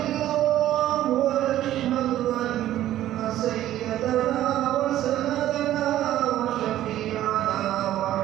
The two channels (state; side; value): quieter; left; 13.2 dB